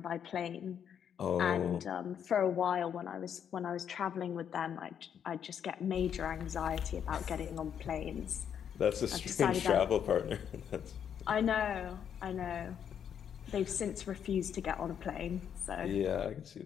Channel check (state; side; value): quieter; right; 8.5 dB